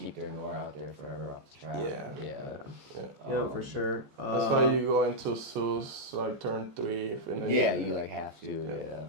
their Noir out there forever off the trap. Yeah. Yeah. Yeah, for sure. That's why you go into Zeus like turn 3. And then Yeah, you like have to. Yeah.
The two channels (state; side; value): late; left; 14 ms